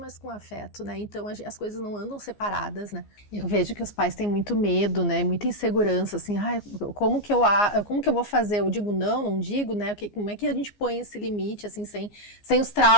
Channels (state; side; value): late; right; 14 ms